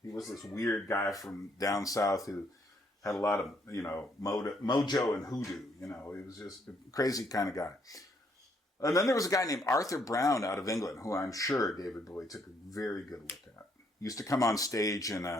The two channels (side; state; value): both; normal; correlation 0.70